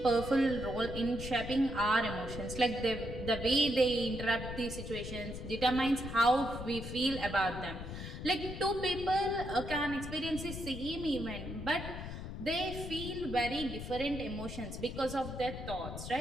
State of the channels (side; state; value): left; noise; rumble, 8 dB below the sound